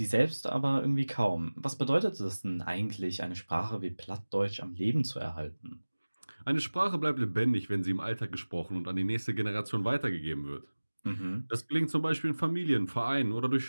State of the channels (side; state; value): both; inverted; correlation -1.00